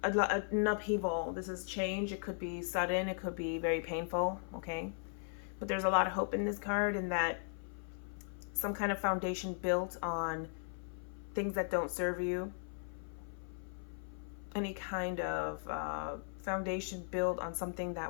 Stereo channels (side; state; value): right; silent; 53 dB below the other